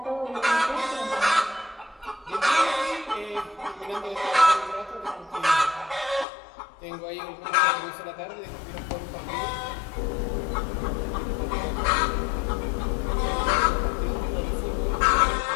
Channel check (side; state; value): right; drops out; at 6.2 s